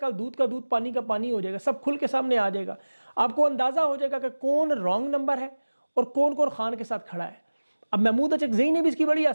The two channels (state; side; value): inverted; both; correlation -1.00